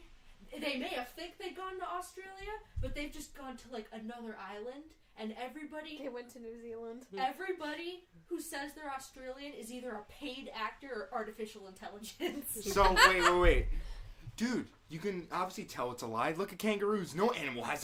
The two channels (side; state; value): both; identical; correlation 1.00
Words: They may have think they've gone to Australia, but they've just gone to like another island. And everybody They went to New Zealand. Everybody who says they're Australian is either a paid actor or artificial intelligence. So wait, dude. You can obviously tell it's a lie. Look at kangaroos. No animal has